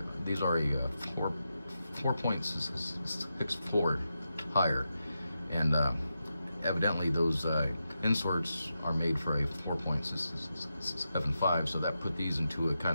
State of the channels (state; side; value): inverted; both; correlation -0.88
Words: a 4.64 tire, and evidently those inserts are made for a 4.75, so that put these into a